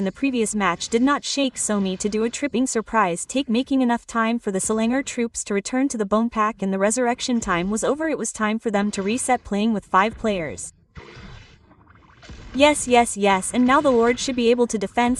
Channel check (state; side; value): identical; both; correlation 1.00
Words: the previous match did not shake Somi to do a tripping surprise take, making enough time for the Selangor troops to return to the bone pack, and the resurrection time was over. It was time for them to reset playing with 5 players. Yes, and now the Lord should be able to